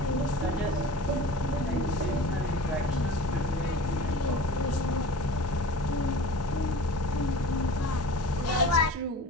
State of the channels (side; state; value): both; normal; correlation 0.39